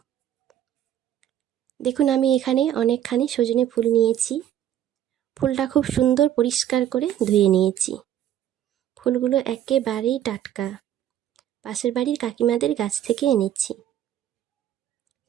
দেখুন, আমি এখানে অনেকখানি সজনে ফুল নিয়েছি। ফুলটা খুব সুন্দর পরিষ্কার করে ধুয়ে নিয়েছি। ফুলগুলো একেবারেই টাটকা, পাশের বাড়ির কাকিমাদের গাছ থেকে এনেছি।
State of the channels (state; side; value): quieter; left; 11.0 dB